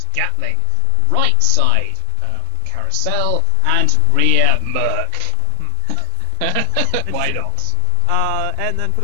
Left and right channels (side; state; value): both; different; correlation 0.00